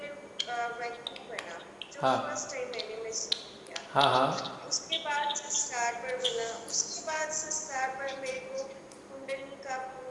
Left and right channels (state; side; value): identical; both; correlation 1.00